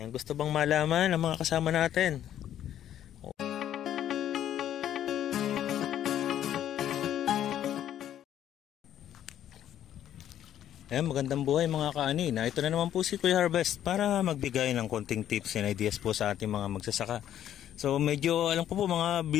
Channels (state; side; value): quieter; right; 11.0 dB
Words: gusto bang malaman ang mga kasama natin? Ayan, magandang buhay mga kaanina. Ito na naman po si Kuya Harvest para magbigay ng konting tips and ideas po sa ating mga magsasaka. So medyo alam ko po mga